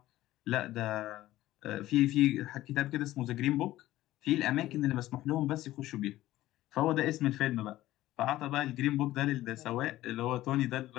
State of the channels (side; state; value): right; quieter; 15.5 dB